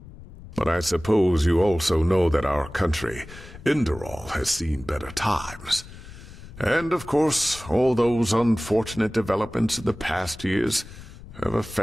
But I suppose you also know that our country, Enderal, has seen better times. And, of course, all those unfortunate developments in the past years have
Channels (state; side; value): noise; left; rumble, 17 dB below the sound